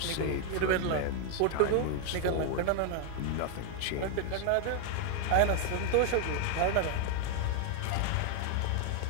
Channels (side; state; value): both; different; correlation 0.00